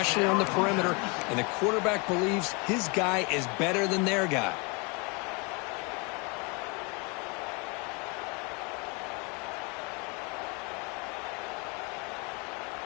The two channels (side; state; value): right; quieter; 30.3 dB